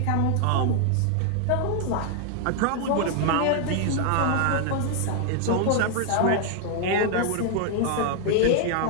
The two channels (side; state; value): both; different; correlation 0.00